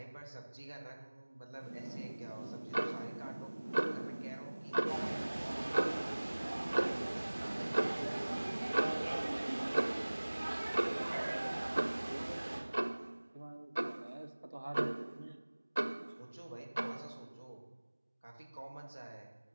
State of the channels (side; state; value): both; inverted; correlation -1.00